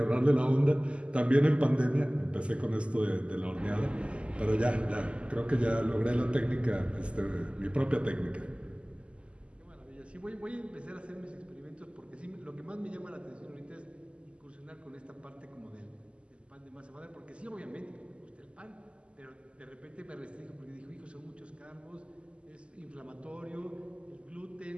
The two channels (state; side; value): late; left; 0.054 ms